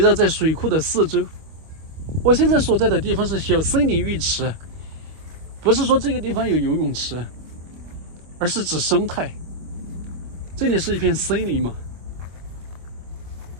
在水库的4周。我现在所在的地方是小森林浴池，不是说这个地方有游泳池，而是指生态。这里是一片森林嘛，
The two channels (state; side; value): late; left; 25 ms